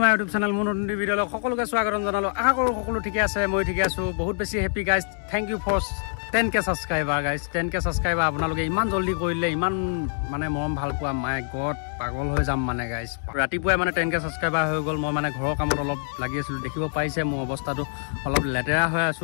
my YouTube channel মন নতুন ভিডিঅ সকলোকে স্বাগতম জনালো আশা কৰো সকলো ঠিকে আছে মই ঠিকে আছো বহুত বেছি happy guys thank you for 10k subscriber guys 10k subscriber আপোনালোকে ইমান জলদি কৰিলে ইমান মানে মৰম ভাল পোৱা মাই গড পাগল হৈ যাম মানে গাইস ৰাতিপুৱাই মানে 10k সাবস্ক্ৰাইবাৰ হৈ গল মই মানে ঘৰৰ কামত অলপ লাগি আছিল দেখিব পাইছে মোৰ অৱস্থাটো অলপ লেতেৰা হৈ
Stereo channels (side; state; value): right; silent; 62 dB below the other